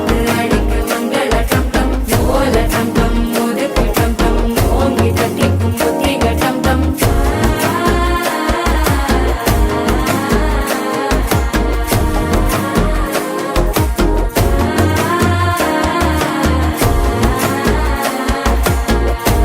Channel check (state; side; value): identical; both; correlation 1.00